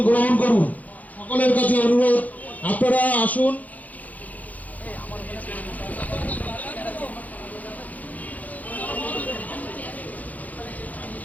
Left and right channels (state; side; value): late; right; 0.078 ms